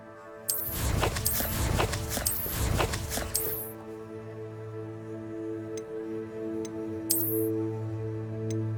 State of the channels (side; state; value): both; identical; correlation 1.00